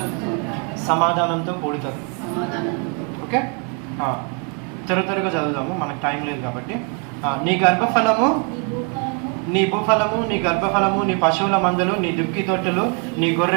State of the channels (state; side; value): quieter; left; 37.5 dB